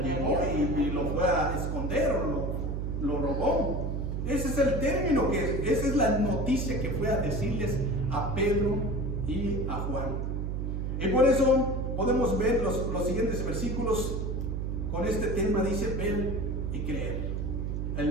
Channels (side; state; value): right; noise; hum, 1 dB below the sound